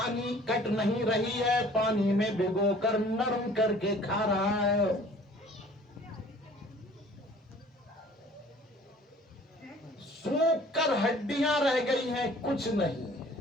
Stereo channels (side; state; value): both; normal; correlation 0.52